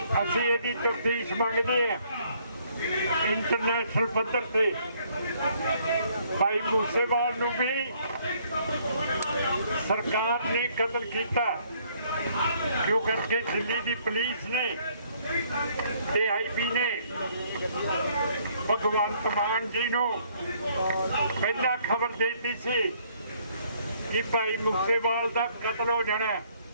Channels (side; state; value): both; inverted; correlation -0.65